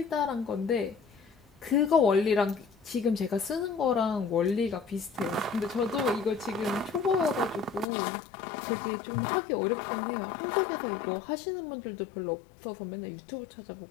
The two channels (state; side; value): drops out; right; at 7.9 s